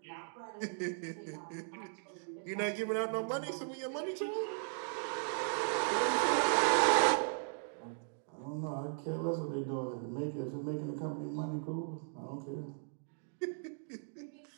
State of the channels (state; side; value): silent; left; digital silence